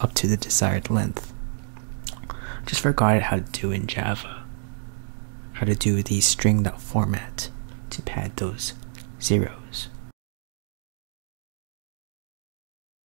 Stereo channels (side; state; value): left; silent; digital silence